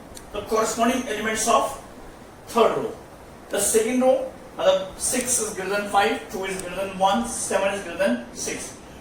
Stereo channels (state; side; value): identical; both; correlation 1.00